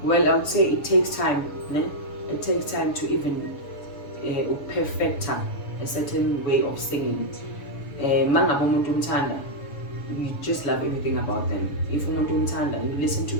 Well, I would say it takes time. It takes time to even perfect a certain way of singing. You just love everything about them. If you listen to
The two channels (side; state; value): right; late; 7.0 ms